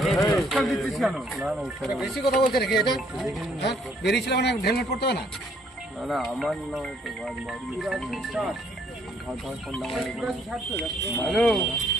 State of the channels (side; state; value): both; normal; correlation 0.65